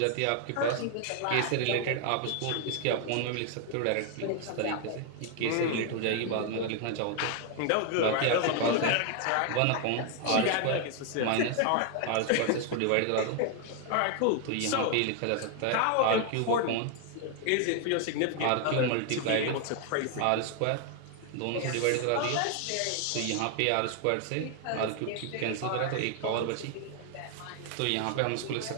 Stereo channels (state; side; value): different; both; correlation 0.00